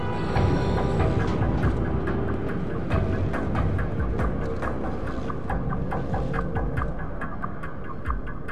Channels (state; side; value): identical; both; correlation 1.00